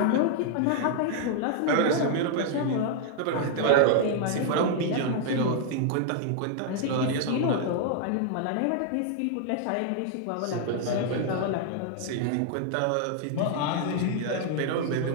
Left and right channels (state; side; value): different; both; correlation 0.00